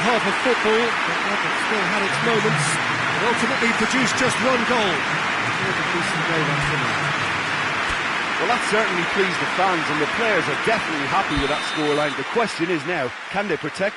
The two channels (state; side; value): identical; both; correlation 1.00